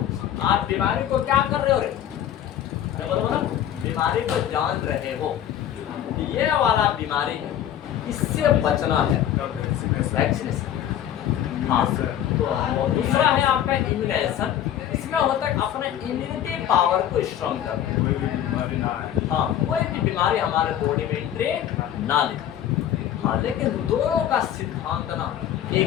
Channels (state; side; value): quieter; right; 10.9 dB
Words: आप बीमारी को क्या कर रहे हो रे, बोलो बीमारी को जान रहे हो, ये वाला बीमारी इससे बचना है, वैक्सीनेशन। हाँ, तो दूसरा है आपका इम्यूनाइजेशन, इसमें होता है अपने इम्यूनिटी पावर को स्ट्रॉन्ग करना। हाँ, कोई भी बीमारी हमारे बॉडी में एंट्री ना ले। हाँ, लेकिन दोनों का सिद्धांत ना